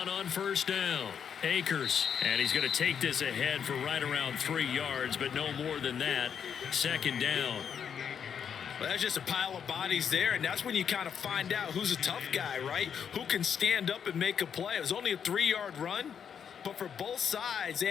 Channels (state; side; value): quieter; right; 7.7 dB